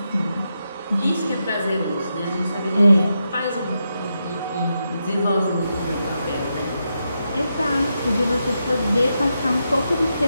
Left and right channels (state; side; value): inverted; both; correlation -0.85